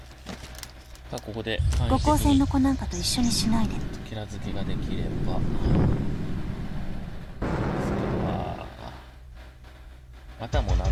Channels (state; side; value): identical; both; correlation 1.00